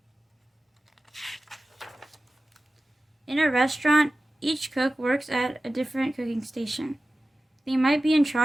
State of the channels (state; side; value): normal; both; correlation 0.95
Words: In a restaurant, each cook works at a different cooking station. They might be in